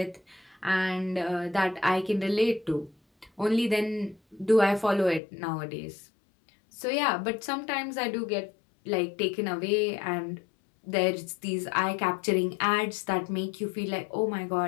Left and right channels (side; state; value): right; drops out; at 5.2 s